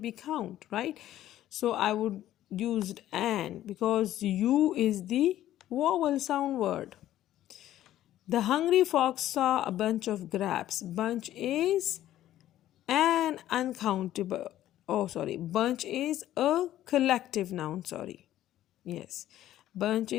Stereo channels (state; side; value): quieter; right; 13.1 dB